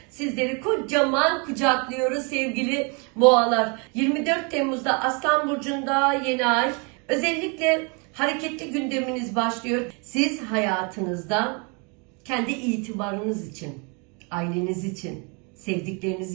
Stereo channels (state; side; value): quieter; left; 33.3 dB